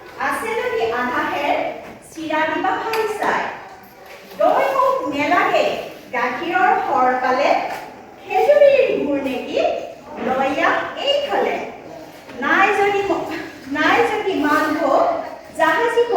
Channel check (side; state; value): both; identical; correlation 1.00